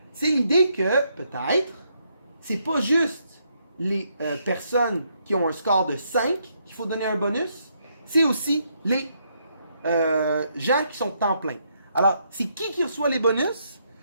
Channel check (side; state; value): both; inverted; correlation -0.75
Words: C'est l'idée que, peut-être, c'est pas juste les personnes qui ont un score de 5 qu'il faut donner un bonus, c'est aussi les gens qui sont temps plein. Alors, c'est qui reçoit les bonus?